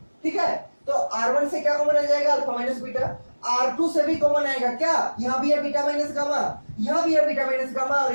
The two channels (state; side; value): inverted; both; correlation -1.00